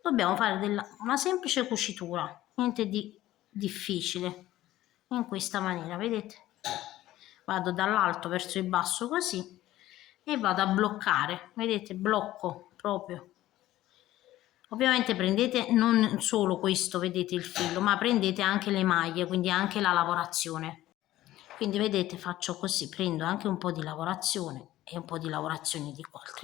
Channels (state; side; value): quieter; right; 15.0 dB